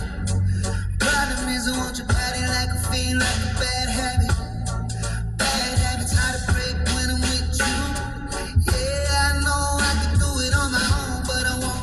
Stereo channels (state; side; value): identical; both; correlation 1.00